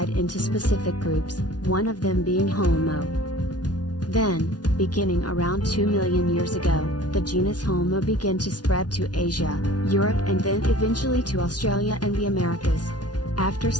into specific groups, one of them being Homo. Then, beginning around 2 million years ago, the genus Homo began to spread to Asia, Europe and then eventually to Australia and the Americas. After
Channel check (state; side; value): late; right; 0.69 ms